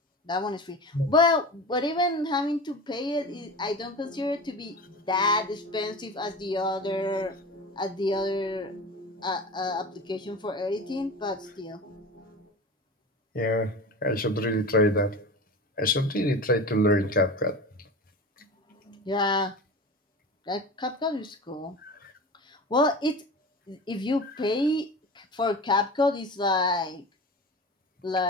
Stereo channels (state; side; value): normal; both; correlation 0.32